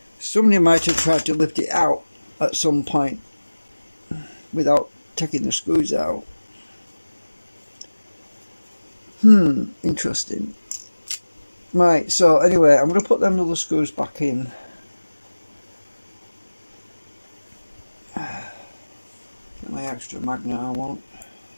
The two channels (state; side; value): inverted; both; correlation -1.00